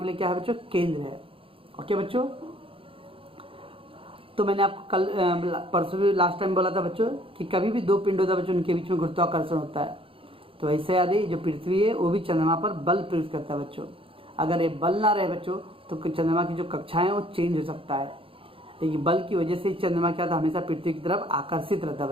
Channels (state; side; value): late; left; 0.26 ms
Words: लिए क्या है बच्चों, केंद्र है। ओके बच्चों, तो मैंने आपको कल परसों भी लास्ट टाइम बोला था बच्चों कि कभी भी दो पिंड होता है बच्चों, उनके बीच में गुरुत्वाकर्षण होता है। तो ऐसे याद है, जो पृथ्वी है वो भी चंद्रमा पर बल प्रयुक्त करता है बच्चों। अगर ये बल ना रहे बच्चों तो चंद्रमा की जो कक्षाएं हैं वो चेंज हो सकता है, लेकिन बल की वजह से चंद्रमा क्या था, हमेशा पृथ्वी की तरफ आकर्षित रहता है